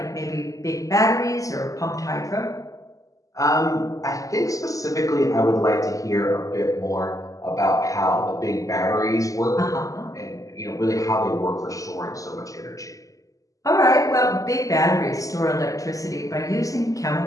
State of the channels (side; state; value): right; late; 0.16 ms